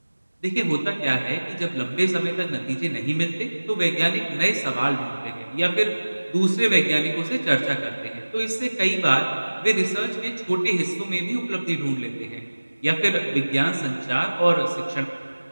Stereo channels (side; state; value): both; inverted; correlation -1.00